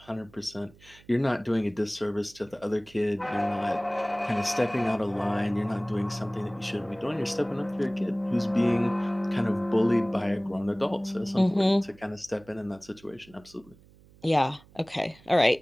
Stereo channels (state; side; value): noise; right; hum, 26 dB below the sound